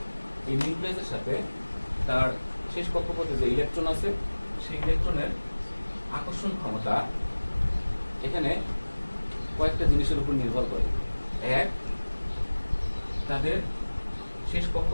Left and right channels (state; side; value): inverted; both; correlation -1.00